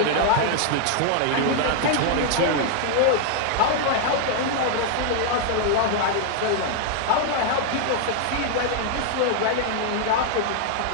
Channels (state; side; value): different; both; correlation 0.00